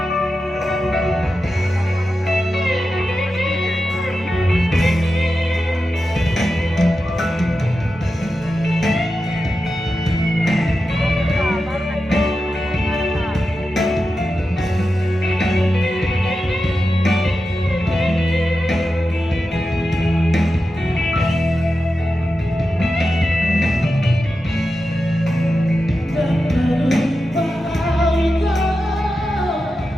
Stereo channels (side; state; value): both; normal; correlation 0.91